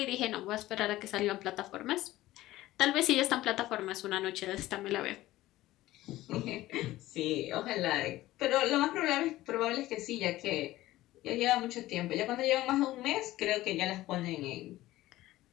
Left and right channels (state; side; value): quieter; right; 16.3 dB